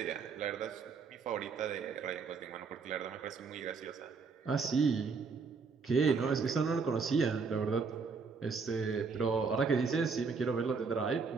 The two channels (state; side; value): quieter; left; 5.0 dB